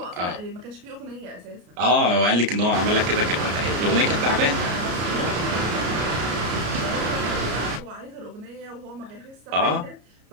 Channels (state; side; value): late; left; 33 ms